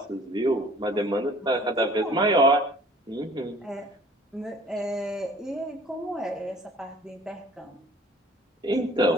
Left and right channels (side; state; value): both; normal; correlation 0.51